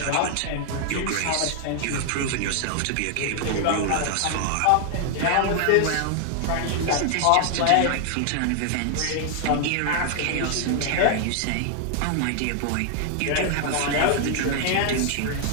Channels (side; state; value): both; different; correlation 0.00